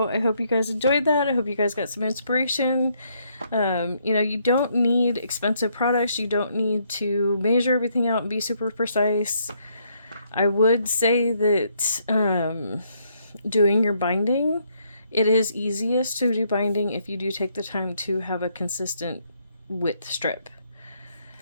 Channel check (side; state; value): both; inverted; correlation -0.71